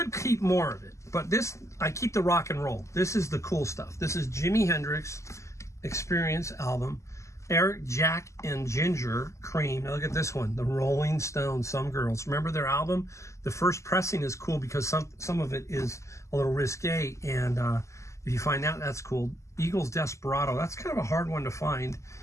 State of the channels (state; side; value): late; right; 0.14 ms